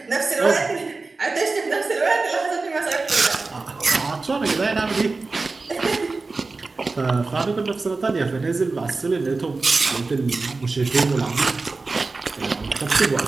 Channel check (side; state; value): left; quieter; 3.8 dB